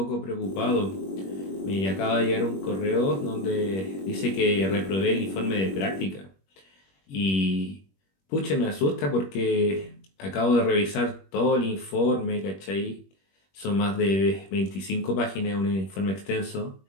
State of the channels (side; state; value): right; late; 21 ms